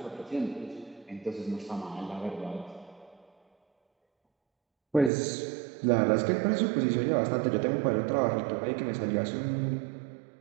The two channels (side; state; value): left; drops out; at 5.1 s